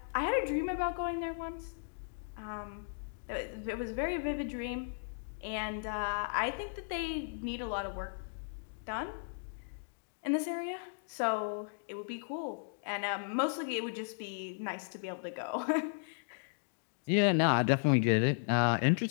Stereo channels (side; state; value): right; silent; digital silence